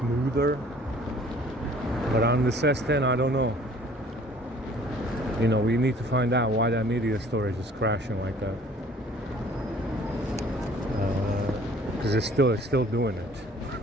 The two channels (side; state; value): both; normal; correlation 0.54